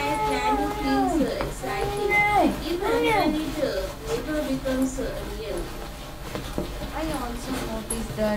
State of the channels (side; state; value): both; identical; correlation 1.00